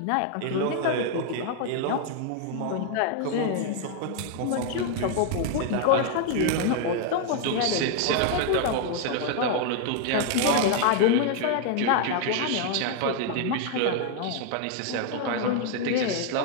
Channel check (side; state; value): both; different; correlation 0.00